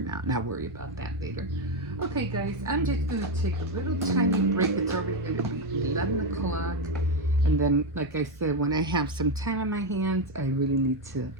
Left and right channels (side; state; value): both; normal; correlation 0.08